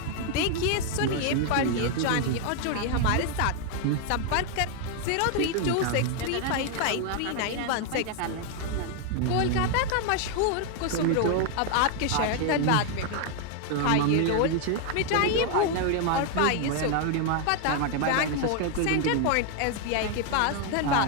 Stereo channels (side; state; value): both; different; correlation 0.00